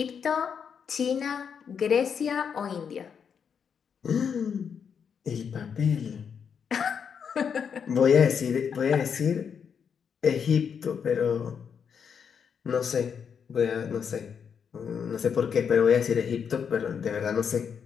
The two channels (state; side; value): quieter; right; 7.0 dB